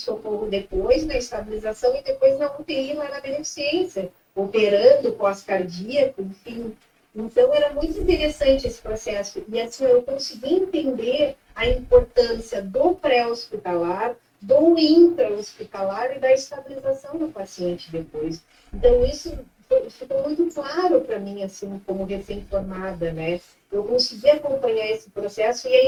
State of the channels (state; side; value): identical; both; correlation 1.00